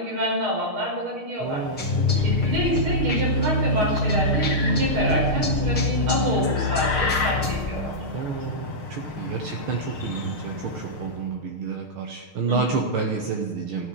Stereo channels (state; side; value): late; left; 6.5 ms